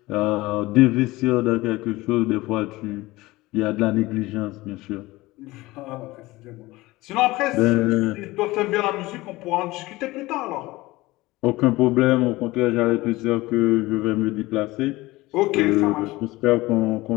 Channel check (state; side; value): quieter; right; 19.7 dB